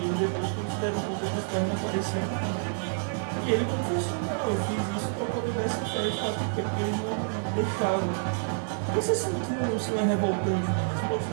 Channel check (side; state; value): left; silent; digital silence